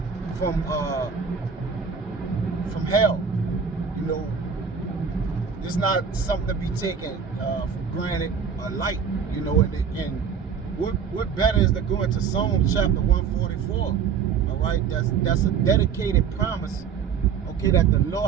from hell. You know, it's not something to be taken for granted or light. You know, and what better is to go into Psalms chapter 144? All right, that's a dedicated promise. Okay, that the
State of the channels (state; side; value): quieter; left; 6.6 dB